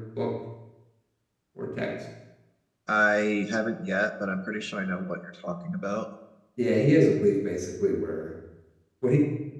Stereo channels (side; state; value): both; identical; correlation 1.00